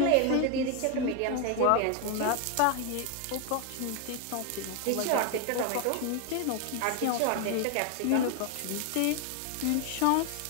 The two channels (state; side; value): different; both; correlation 0.01